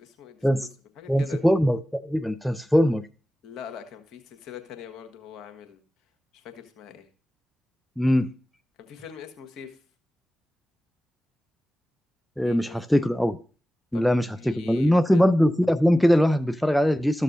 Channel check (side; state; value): both; normal; correlation 0.96